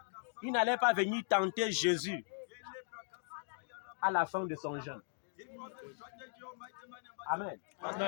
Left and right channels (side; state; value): right; silent; digital silence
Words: il n'allait pas venir tenter Jésus à la fin de son jeûne. Amen.